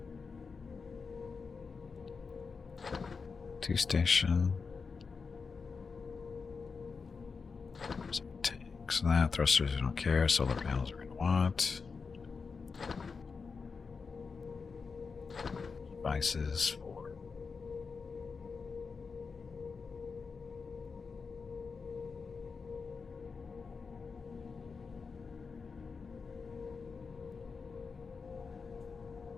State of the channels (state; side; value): quieter; right; 5.0 dB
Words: Two station. Tanks, that. Thrusters, we don't care. Solar panels, we're going to want. Devices for.